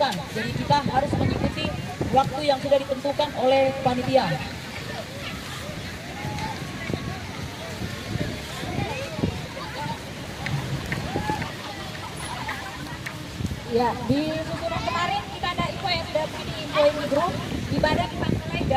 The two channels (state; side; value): identical; both; correlation 1.00